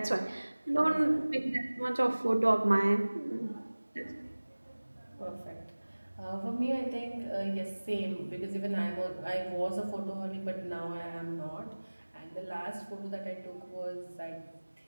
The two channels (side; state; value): both; inverted; correlation -1.00